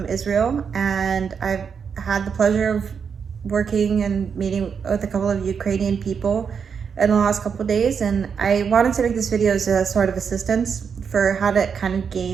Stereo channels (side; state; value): left; quieter; 6.6 dB